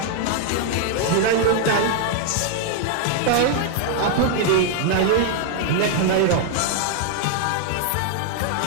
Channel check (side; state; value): both; different; correlation 0.00